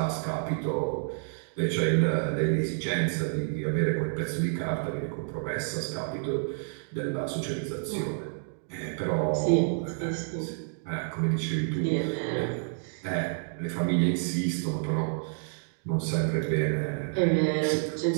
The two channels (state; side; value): silent; left; digital silence